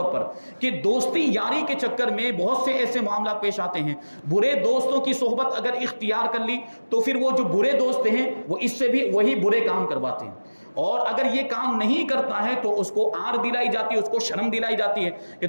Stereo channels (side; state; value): both; inverted; correlation -1.00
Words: پر کہ دوستی یاری کے چکر میں بہت سے ایسے معاملات پیش آتے ہیں، برے دوستوں کی صحبت اگر اختیار کر لی تو پھر وہ جو برے دوست ہیں وہ اس سے بھی وہی برے کام کرواتے ہیں، اور اگر یہ کام نہیں کرتا ہے تو اس کو آر دلائی جاتی ہے، اس کو شرم دلائی جاتی ہے کہ